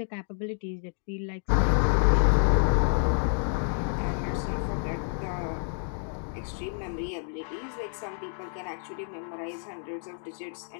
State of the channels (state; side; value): silent; right; digital silence